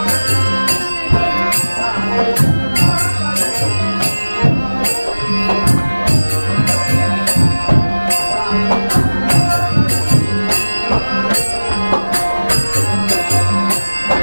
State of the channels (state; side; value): inverted; both; correlation -1.00